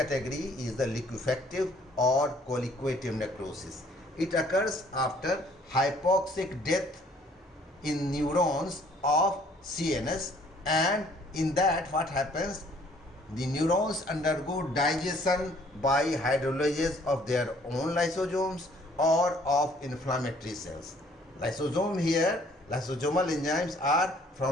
is the liquefactive or coagulative necrosis. It occurs after hypoxic death in neurons of CNS, and in that what happens? The neurons undergo digestion by hydrolysis of their own lysosomes or of inflammatory cells. Lysosome here, lysosomal enzymes are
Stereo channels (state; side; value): normal; both; correlation 0.60